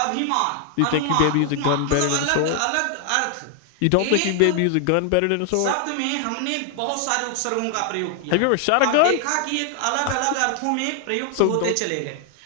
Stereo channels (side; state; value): both; different; correlation 0.00